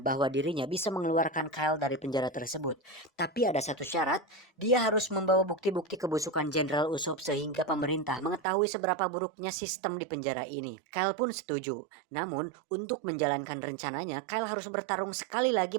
dirinya bisa mengeluarkan Kyle dari penjara tersebut. Tapi ada satu syarat, dia harus membawa bukti-bukti kebusukan Jenderal Usopp sehingga pemerintah mengetahui seberapa buruknya sistem di penjara ini. Kyle pun setuju. Namun, untuk menjalankan rencananya, Kyle harus bertarung sekali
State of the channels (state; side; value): drops out; left; at 8.4 s